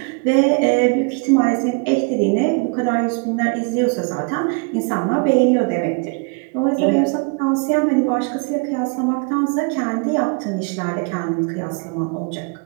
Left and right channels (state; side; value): quieter; left; 34.1 dB